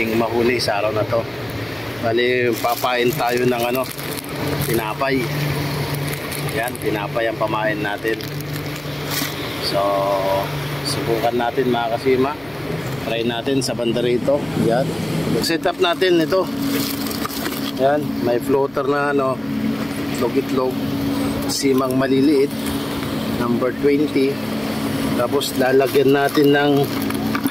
mahuli sa araw na to. Bali, papain tayo ng tinapay. Yan, tinapay ang pamain natin. So, subukan natin mga Kasima. Try natin sa banda rito. Yan. Set up natin ito. Yan, may floater na itlog-itlog. Simang maliliit. Number 20. Tapos lalagyan natin ng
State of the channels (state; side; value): noise; right; hum, 26 dB below the sound